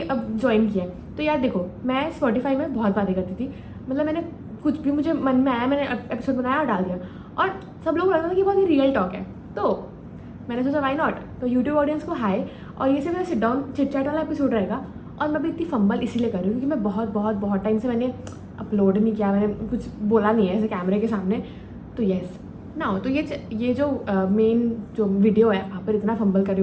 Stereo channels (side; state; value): both; identical; correlation 1.00